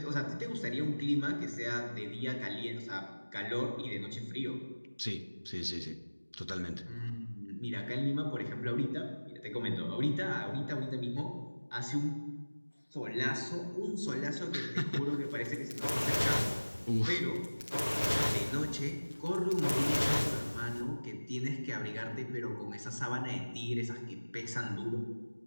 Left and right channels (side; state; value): both; inverted; correlation -1.00